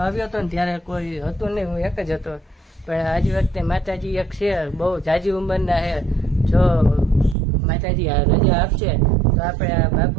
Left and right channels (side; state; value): left; drops out; at 7.4 s